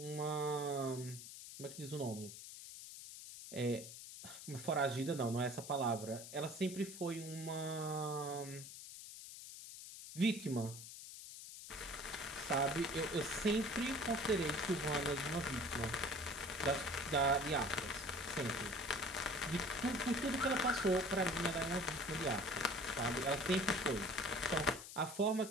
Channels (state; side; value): noise; left; hiss, 12 dB below the sound